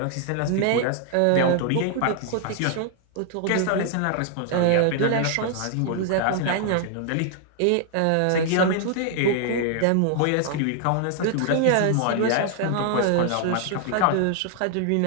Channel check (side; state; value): both; different; correlation 0.00